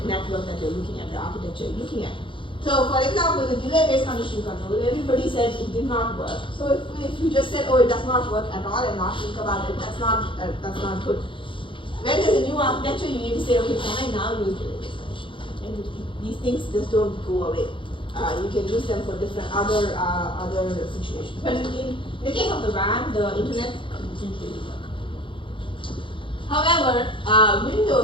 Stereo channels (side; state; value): right; late; 0.25 ms